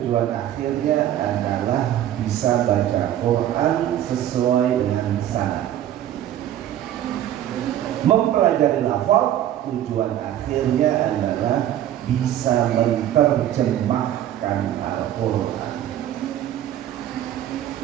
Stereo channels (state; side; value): quieter; left; 11.8 dB